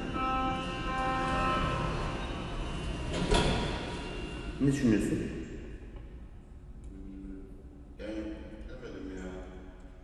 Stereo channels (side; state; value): both; identical; correlation 1.00